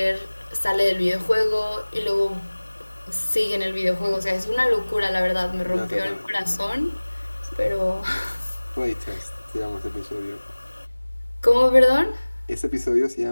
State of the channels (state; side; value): inverted; both; correlation -1.00